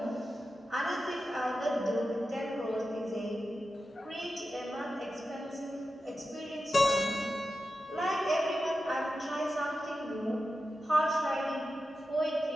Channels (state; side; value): normal; both; correlation 0.91